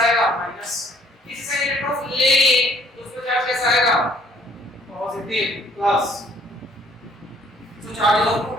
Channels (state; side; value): normal; both; correlation 0.62